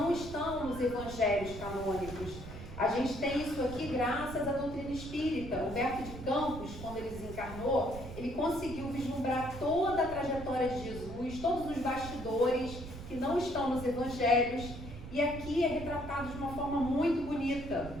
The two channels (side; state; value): right; noise; rumble, 11 dB below the sound